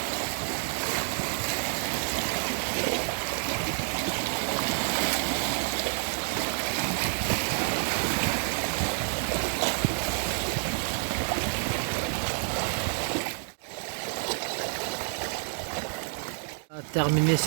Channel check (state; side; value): silent; left; digital silence